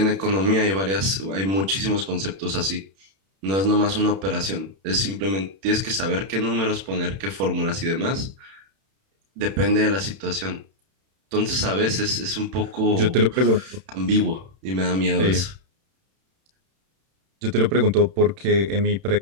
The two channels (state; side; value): late; left; 31 ms